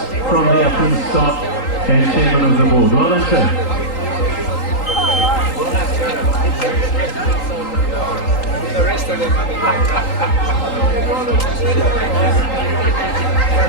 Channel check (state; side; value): late; right; 3.8 ms